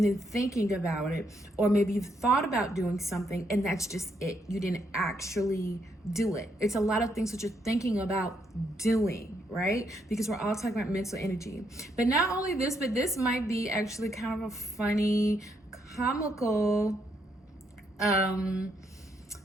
then thinking about it. Or maybe you've thought about doing something and that's just it. You didn't actually do it. It's a lot of things that you're thinking about doing, right? Because we're all talking about mental energy. But not only this, but this might be actually kind of a funny, comical,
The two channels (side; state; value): both; normal; correlation 0.76